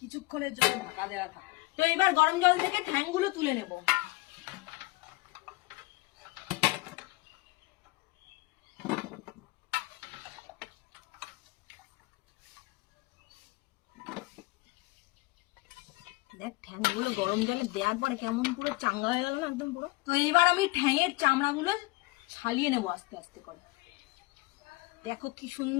জন্য ঢাকা দেওয়া থাকে। তো এবার গরম জল থেকে ঠ্যাংগুলো তুলে নেব। দেখ ঠ্যাংগুলো গরম জলে দেওয়ার পরে কেমন পুরো চাঙ্গা হয়ে গেল না একদম পুরো। তো এবার আমি ঠ্যাংয়ের চামড়াগুলো ছালিয়ে নেবো আস্তে আস্তে করে। দেখো কি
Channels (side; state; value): right; quieter; 21.9 dB